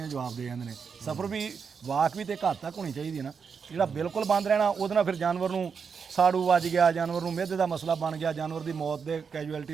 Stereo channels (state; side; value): quieter; left; 6.1 dB